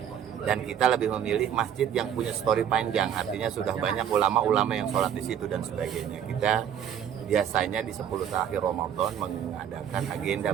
Dan kita lebih memilih masjid yang punya story panjang, artinya sudah banyak ulama-ulama yang sholat di situ dan sebagainya. Kita biasanya di 10 terakhir Ramadan mengadakan agenda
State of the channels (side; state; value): left; quieter; 9.2 dB